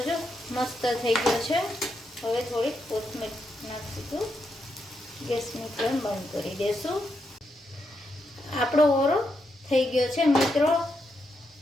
જો મસ્ત થઈ ગયો છે. હવે થોડીક કોથમીર નાખીશું. ગેસની ફ્લેમ બંધ કરી દેશું. આપણો ઓરો થઈ ગયો છે મિત્રો.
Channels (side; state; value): both; normal; correlation 0.82